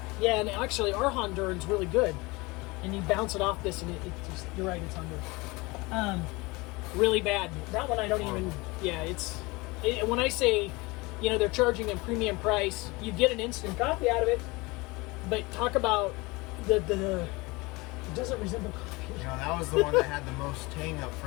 Yeah, and actually, our Honduran's really good. And you bounce it off this, and it just, you're right, it's Honduras. Really bad. That one I don't even. Yeah, when I say, they're charging a premium price, you get an instant coffee out of it. But talk about it doesn't resemble coffee. That was the one that had the most tang up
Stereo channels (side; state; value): right; quieter; 24.1 dB